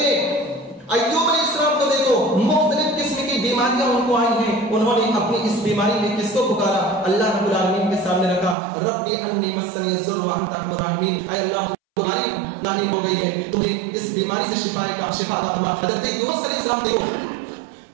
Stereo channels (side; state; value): left; drops out; at 8.6 s